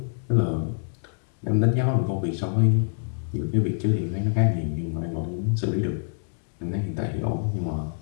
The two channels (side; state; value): right; silent; digital silence